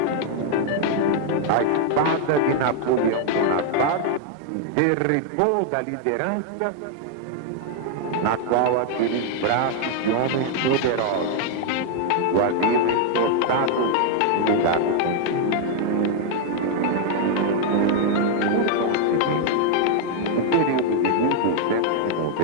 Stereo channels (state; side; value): different; both; correlation 0.00